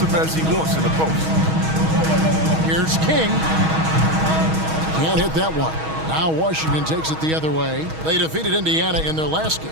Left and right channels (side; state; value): left; late; 6.3 ms